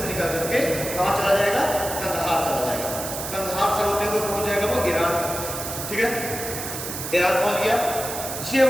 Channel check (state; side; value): noise; right; hiss, 6 dB below the sound